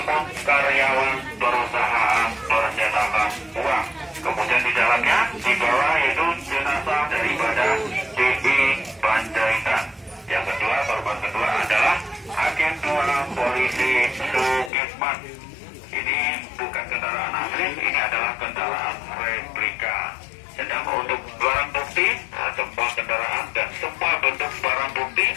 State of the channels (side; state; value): right; drops out; at 14.7 s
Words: karyawan perusahaan percetakan uang. Kemudian di dalamnya dibawa yaitu jenazah daripada DI Panjaitan. Yang kedua, korban kedua adalah Agen 2 Polisi Sukitman. Ini bukan kendaraan asli, ini adalah kendaraan replika. Sedang untuk barang bukti, semua kendaraan dan semua bentuk barang bukti